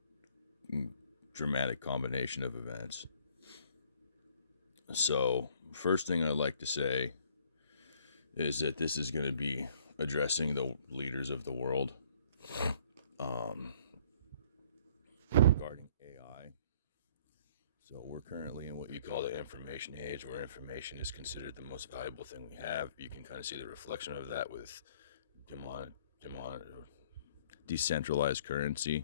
dramatic combination of events. So, first thing I'd like to say is that this is going to be addressing the leaders of the world um, regarding AI. So, we're currently in what you call the information age, where information is considered the most valuable thing we have. You can kind of see the reflection of that with demon, decentralized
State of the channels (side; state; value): both; inverted; correlation -0.60